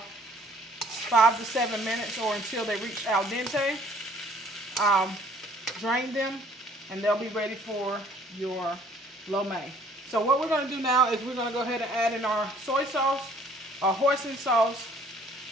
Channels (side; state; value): both; normal; correlation 0.58